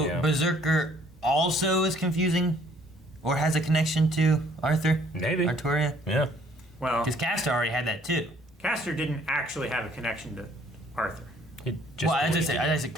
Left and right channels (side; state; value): both; normal; correlation 0.61